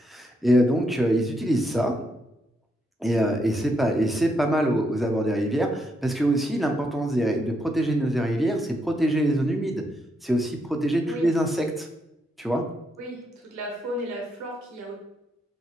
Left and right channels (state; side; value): normal; both; correlation 0.79